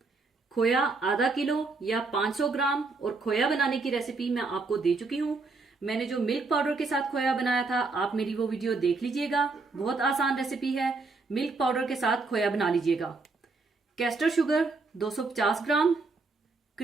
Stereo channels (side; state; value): left; quieter; 3.9 dB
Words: खोया आधा किलो या 500 ग्राम। और खोया बनाने की रेसिपी मैं आपको दे चुकी हूँ। मैंने जो मिल्क पाउडर के साथ खोया बनाया था, आप मेरी वो वीडियो देख लीजिएगा। बहुत आसान रेसिपी है। मिल्क पाउडर के साथ खोया बना लीजिएगा। कैस्टर शुगर 250 ग्राम।